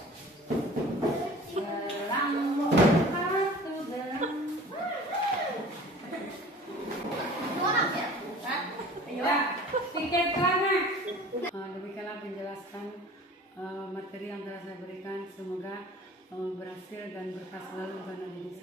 demikianlah penjelasan materi yang telah saya berikan. Semoga berhasil dan berkah selalu pada diri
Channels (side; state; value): both; normal; correlation 0.44